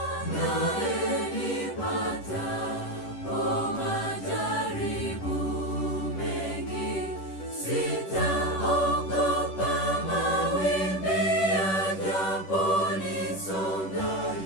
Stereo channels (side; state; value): right; late; 10 ms